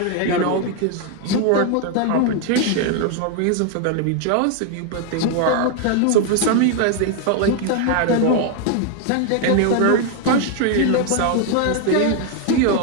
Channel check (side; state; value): both; different; correlation 0.01